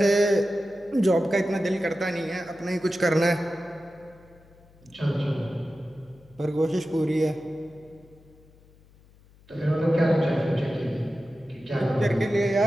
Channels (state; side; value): noise; left; hum, 27 dB below the sound